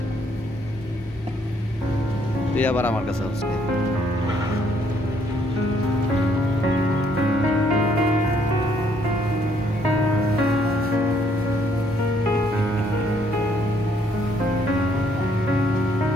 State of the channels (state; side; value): normal; both; correlation 0.68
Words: তুই আবার আমার কাছে আসবে।